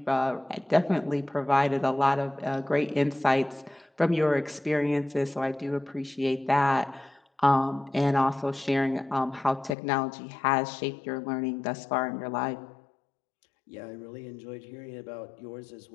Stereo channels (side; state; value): right; drops out; at 9.8 s